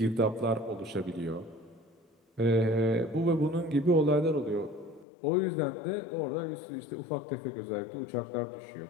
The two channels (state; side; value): drops out; right; at 5.1 s